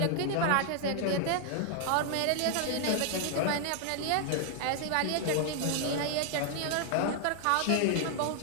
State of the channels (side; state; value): both; different; correlation 0.00